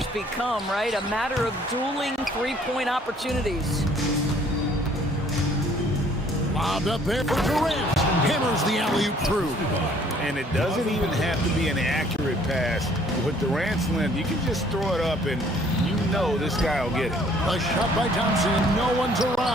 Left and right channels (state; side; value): normal; both; correlation 0.59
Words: become, right? A matter of dueling three-point opportunities. Lobbed up there for Durant. Hammers the alley-oop through. And it doesn't even have to be an accurate pass. With Durant's length, you can just throw it up and you know this guy will get it. A shot by Thompson. No one's